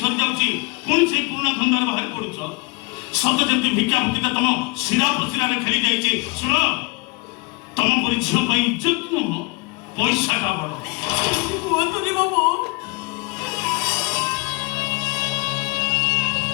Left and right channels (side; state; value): right; quieter; 26.5 dB